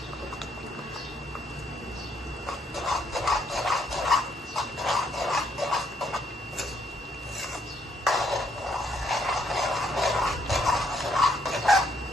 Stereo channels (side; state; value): both; normal; correlation 0.71